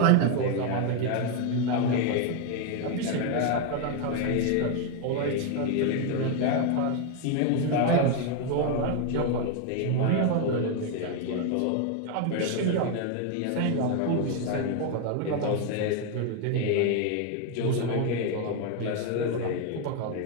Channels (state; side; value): different; both; correlation 0.01